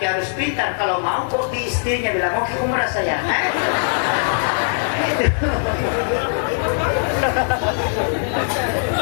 harus pintar. Kalau mau kok di istrinya bilang mau ke umrah saya.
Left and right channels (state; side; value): silent; right; digital silence